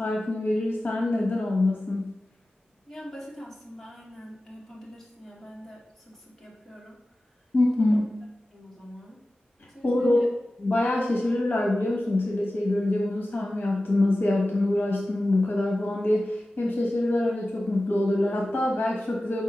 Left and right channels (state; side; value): normal; both; correlation 0.95